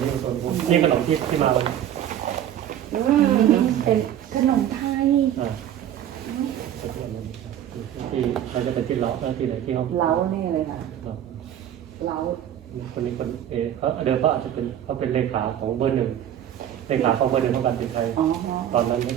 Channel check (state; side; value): quieter; left; 10.7 dB